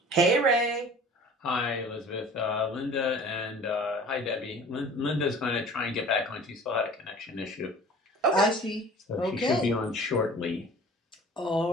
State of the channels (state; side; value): normal; both; correlation 0.45